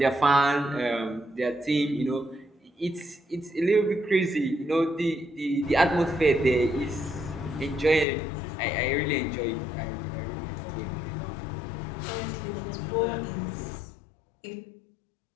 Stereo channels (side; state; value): right; drops out; at 8.1 s